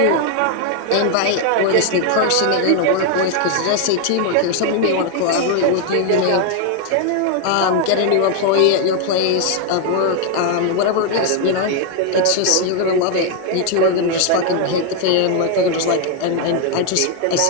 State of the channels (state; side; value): different; both; correlation 0.01